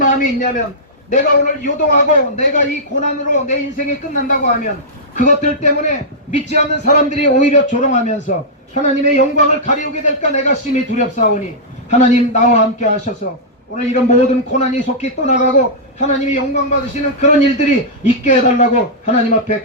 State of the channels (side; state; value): both; normal; correlation -0.12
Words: 있냐면 내가 오늘 요동하고 내가 이 고난으로 내 인생이 끝난다고 하면 그것들 때문에 믿지 않는 사람들이 오히려 조롱하면서 하나님의 영광을 가리우게 될까 내가 심히 두렵사오니 하나님 나와 함께 하셔서 오늘 이런 모든 고난이 속히 떠나가고 하나님이 영광 받으시는 그런 일들이 있게 해달라고 하나님 앞에